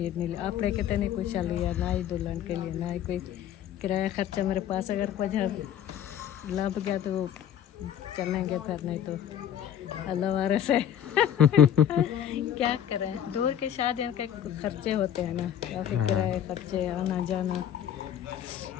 नहीं लिया। आपने कहते नहीं कुछ लिया, ना ही दुल्हन के लिए, ना ही कोई किराया खर्चा मेरे पास। अगर कुछ लग गया तो चलेंगे, फिर नहीं तो अल्लाह वारे से क्या करें। दूर की शादी के खर्चे होते हैं ना, काफ़ी किराए खर्चे, आना जाना,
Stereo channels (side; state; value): right; quieter; 10.0 dB